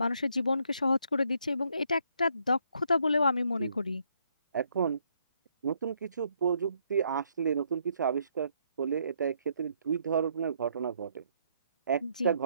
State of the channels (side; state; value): both; inverted; correlation -0.72